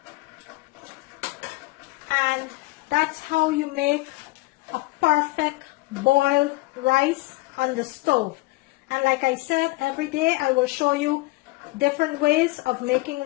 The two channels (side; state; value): right; quieter; 22.1 dB